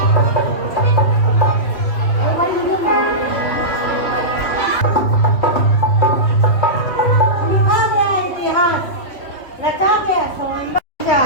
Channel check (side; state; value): right; late; 2.6 ms